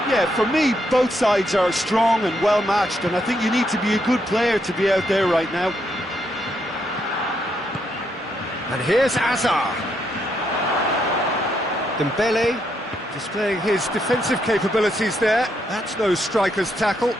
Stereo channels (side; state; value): both; normal; correlation 0.77